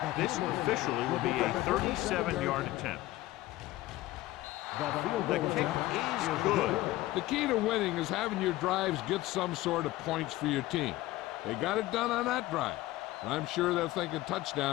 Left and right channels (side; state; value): right; quieter; 17.1 dB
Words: This officially will be a 37-yard attempt. The field The goal kick attempt is good. The key to winning is having your drives get some sort of points for your team. They got it done on that drive. And I'm sure they're thinking